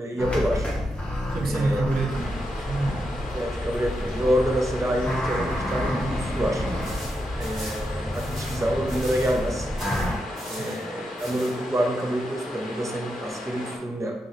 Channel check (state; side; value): normal; both; correlation 0.85